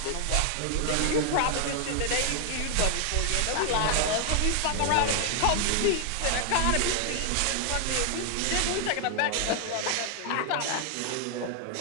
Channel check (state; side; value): different; both; correlation 0.00